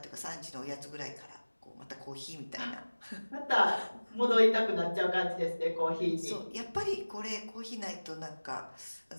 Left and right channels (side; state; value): both; inverted; correlation -1.00